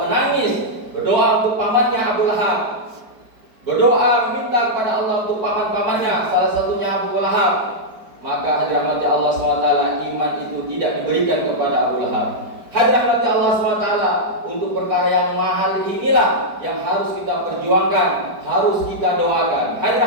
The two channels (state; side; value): late; left; 4.8 ms